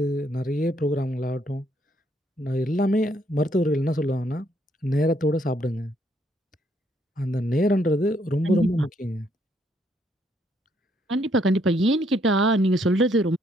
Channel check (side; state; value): both; normal; correlation 0.71